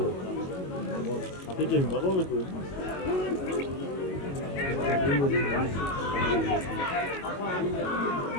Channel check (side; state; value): right; late; 22 ms